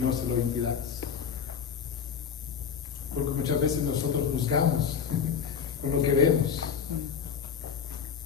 se lo impidáis. Porque muchas veces nosotros juzgamos con lo que vemos,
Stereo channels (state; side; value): quieter; right; 7.1 dB